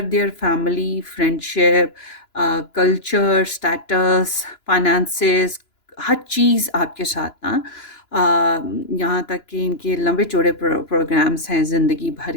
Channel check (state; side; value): late; right; 2.9 ms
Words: their family, friendship, culture, status, finances, हर चीज़ आपके साथ ना, यहाँ तक कि इनके लंबे चौड़े प्रोग्राम्स हैं ज़िंदगी भर